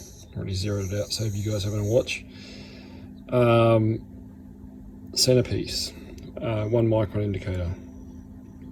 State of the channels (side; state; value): both; identical; correlation 1.00